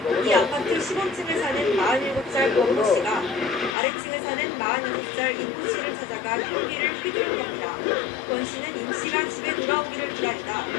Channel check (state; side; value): drops out; right; at 3.8 s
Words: 이 아파트 15층에 사는 47살 권모 씨가 아래층에 사는 46살 임모 씨를 찾아가 흉기를 휘두른 겁니다. 권 씨는 임 씨가 집에 돌아오기를 기다리다